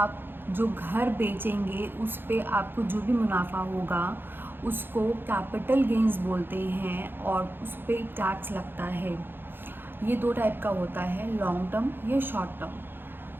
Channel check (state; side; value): late; left; 0.10 ms